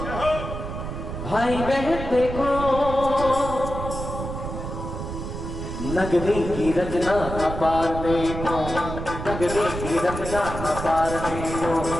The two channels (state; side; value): noise; right; rumble, 7 dB below the sound